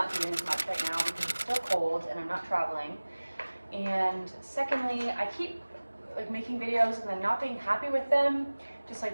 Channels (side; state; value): both; inverted; correlation -1.00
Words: doing as much right now because it's still cold and I'm not traveling. And secondly, I keep making videos and then not being happy with them, just like